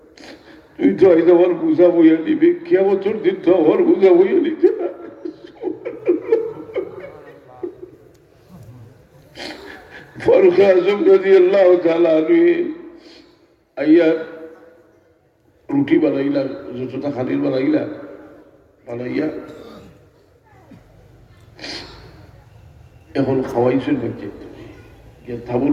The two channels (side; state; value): both; identical; correlation 1.00